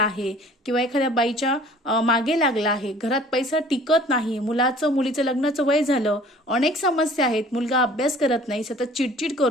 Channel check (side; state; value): both; normal; correlation 0.50